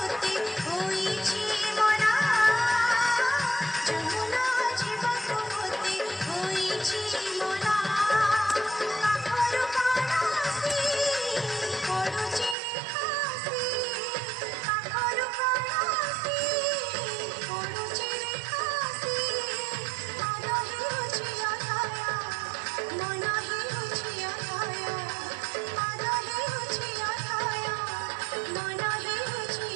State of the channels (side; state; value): left; drops out; at 12.6 s